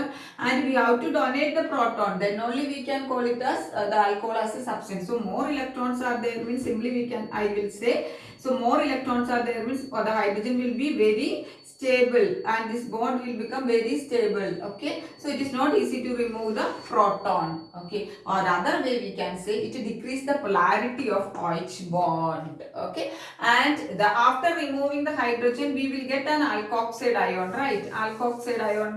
and we have to donate the proton, then only we can call it as the alcohol as a substance. So more electrons are there means simply we can, I will say, so more electrons are there means the hydrogen will be very stable and this bond will become very stable. Okay, so it is not easy to remove the proton. Okay, or other way we can say it decrease the polarity of OH bond. Okay, and after removing the hydrogen we will get an alkoxide ion, right? Alkoxide ion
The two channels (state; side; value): identical; both; correlation 1.00